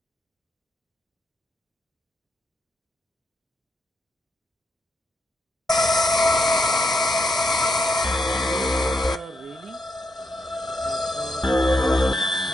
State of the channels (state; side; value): normal; both; correlation 0.81